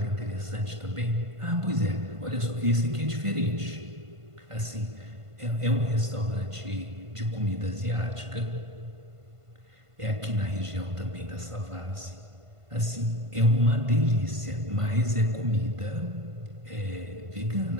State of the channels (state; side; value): late; left; 1.5 ms